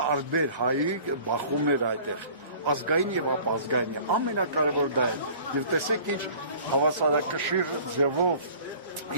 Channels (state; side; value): inverted; both; correlation -0.47